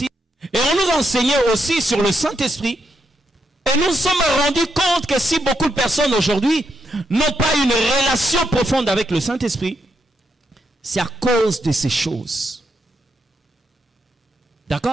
et on nous enseignait aussi sur le Saint-Esprit. Et nous nous sommes rendus compte que si beaucoup de personnes aujourd'hui n'ont pas une relation profonde avec le Saint-Esprit, c'est à cause de ces choses.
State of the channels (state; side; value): normal; both; correlation 0.81